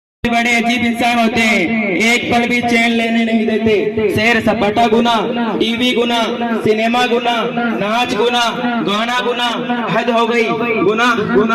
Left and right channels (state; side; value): identical; both; correlation 1.00